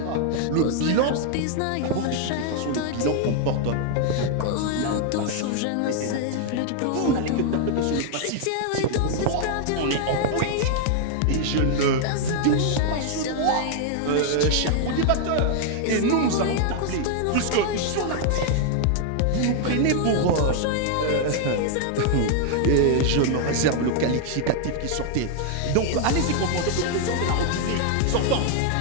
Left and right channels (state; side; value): different; both; correlation 0.00